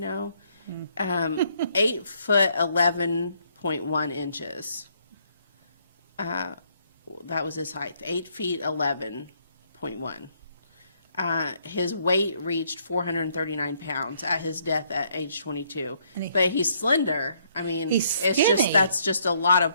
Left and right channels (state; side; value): inverted; both; correlation -0.69